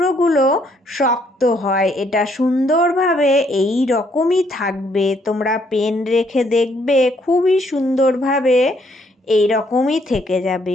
শক্ত হয়, এটা সুন্দরভাবে এই রকমই থাকবে। তোমরা পেন রেখে দেখবে খুবই সুন্দরভাবে এই রকমই থেকে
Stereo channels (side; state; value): both; normal; correlation 0.69